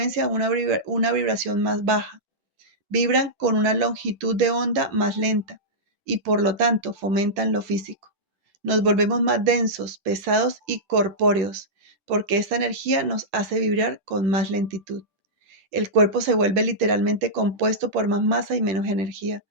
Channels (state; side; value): late; left; 11 ms